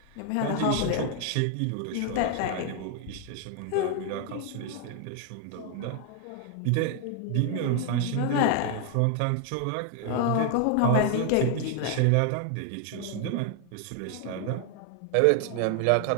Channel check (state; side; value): different; both; correlation 0.00